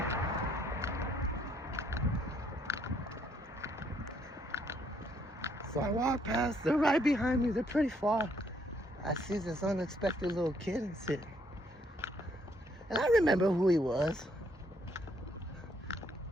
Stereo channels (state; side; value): normal; both; correlation 0.69